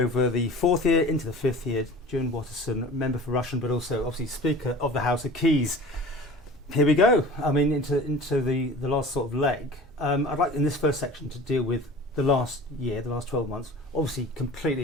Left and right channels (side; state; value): both; normal; correlation 0.41